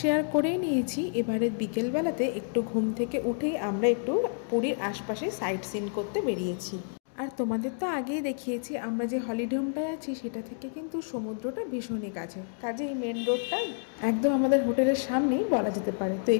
করেই নিয়েছি। এবারে বিকেলবেলাতে একটু ঘুম থেকে উঠেই আমরা একটু পুরীর আশপাশে সাইট সিন করতে বেরিয়েছি। আর তোমাদের তো আগেই দেখিয়েছি আমরা যে হলিডে হোমটায় আছি সেটা থেকে কিন্তু সমুদ্রটা ভীষণই কাছে, কাজেই মেন রোডটা একদম আমাদের হোটেলের সামনেই বলা যেতে পারে। তো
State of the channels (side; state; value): right; silent; digital silence